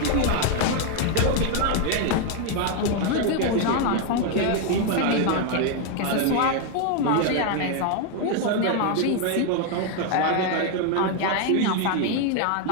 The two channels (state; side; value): different; both; correlation 0.01